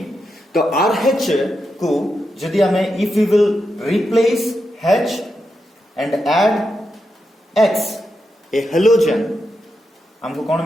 तो RH को जदि आमे if we will replace H and add X a halogen हमको कोन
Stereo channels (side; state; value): both; normal; correlation 0.86